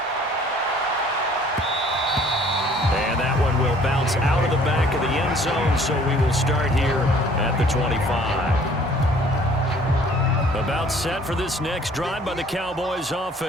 And that one will bounce out of the back of the end zone, so we will start here at the 25. About set for this next drive by the Cowboys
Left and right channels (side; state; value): both; normal; correlation 0.55